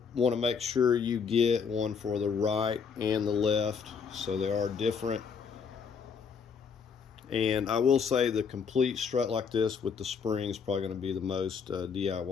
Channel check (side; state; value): right; quieter; 6.1 dB